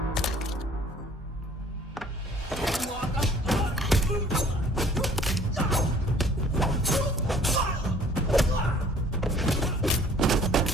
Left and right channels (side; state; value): both; normal; correlation 0.55